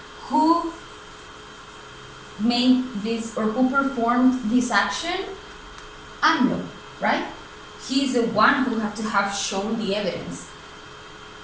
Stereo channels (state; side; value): identical; both; correlation 1.00